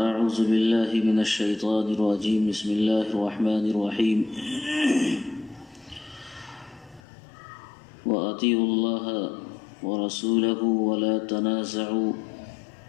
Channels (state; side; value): drops out; right; at 7.0 s